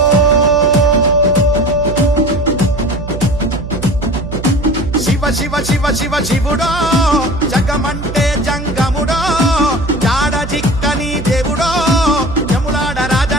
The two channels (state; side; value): noise; right; hum, 9 dB below the sound